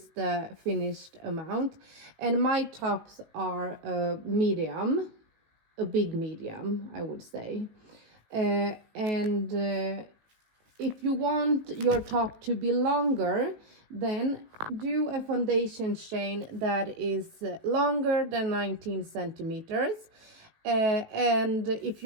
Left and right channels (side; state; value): left; late; 18 ms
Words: the finished amount. And my tops are a medium, a big medium, I would say. If you want your top to be longer, then do a foundation chain that is longer than 19 centimeters. And if